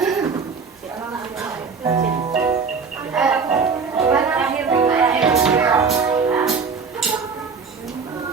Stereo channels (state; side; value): quieter; left; 5.3 dB